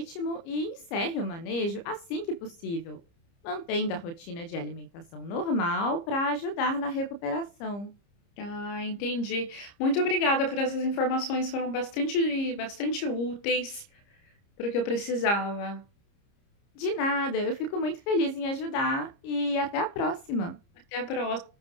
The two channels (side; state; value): right; late; 30 ms